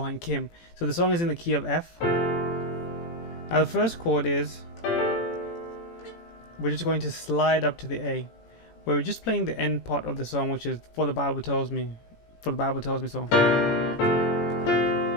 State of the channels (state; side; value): late; right; 18 ms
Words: Kim. So the song is in the key of F. Now the first chord is, we're just going to slide up to the A, where we're just playing the end part of the song, which is For the Bible Tells Me. For the Bible Tells Me song.